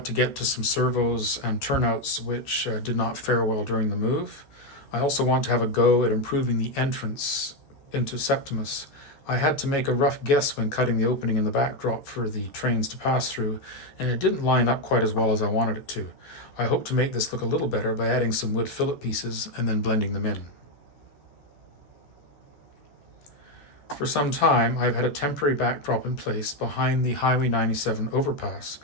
to get to some servos and turnouts which did not fare well during the move. I also want to have a go at improving the entrance into Septimus. I had to make a rough guess when cutting the opening in the backdrop for the trains to pass through, and it didn't line up quite as well as I wanted it to. I hope to make this look a little better by adding some wood fillet pieces and then blending them in. For some time, I've had a temporary backdrop in place behind the Highway 97 overpass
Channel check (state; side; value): late; right; 14 ms